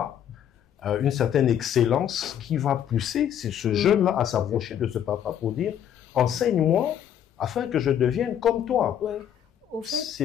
une certaine excellence qui va pousser ce jeune-là à s'approcher de ce papa pour dire « Enseigne-moi afin que je devienne comme toi ». Au fait,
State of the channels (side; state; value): right; quieter; 9.7 dB